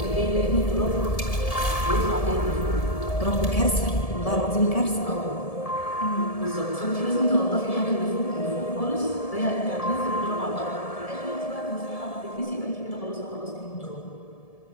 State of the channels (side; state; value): right; late; 1.7 ms